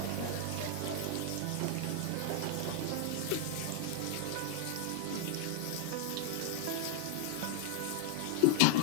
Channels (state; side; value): different; both; correlation -0.01